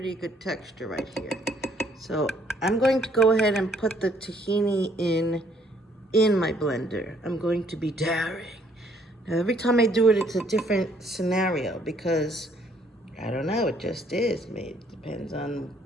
good texture right here. So I'm going to go ahead and put the tahini in my blender. I'm going to be daring. Now every time I do it, it's a different scenario because I don't know, it just is. Maybe it depends on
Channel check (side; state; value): both; normal; correlation 0.64